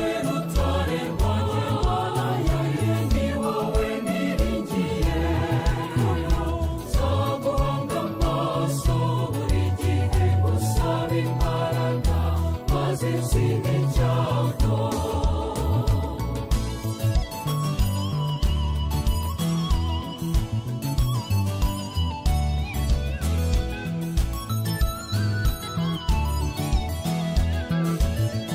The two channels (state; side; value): identical; both; correlation 1.00